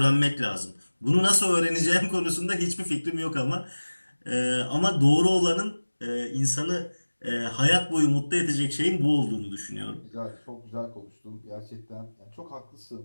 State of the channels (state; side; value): inverted; both; correlation -1.00